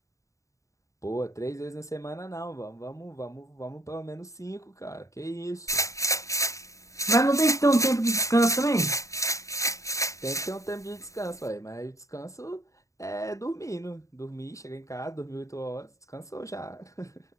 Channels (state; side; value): late; right; 0.15 ms